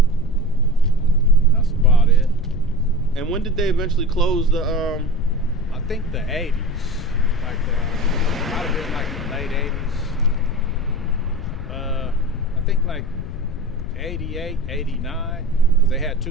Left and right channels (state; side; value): noise; left; rumble, 7 dB below the sound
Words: That's about it. And when did they eventually close the? I think the 80s, like might have been like in the late 80s. I think like 88, 89, because they had